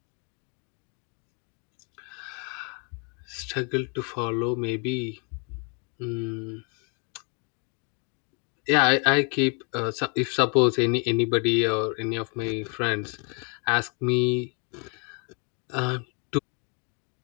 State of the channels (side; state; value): right; quieter; 36.1 dB